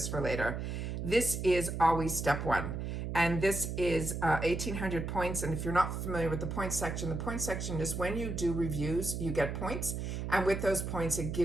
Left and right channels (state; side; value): noise; right; hum, 4 dB below the sound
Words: for later. This is always step one. And this is 1,800 points. And if you're not familiar with the points section is when you do reviews, you get points. And with those points, it